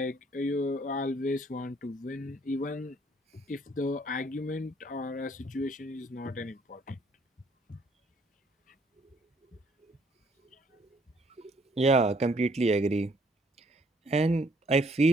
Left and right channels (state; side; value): normal; both; correlation 0.64